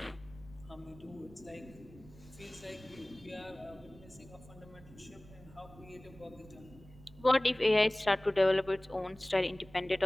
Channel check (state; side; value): noise; right; rumble, 21 dB below the sound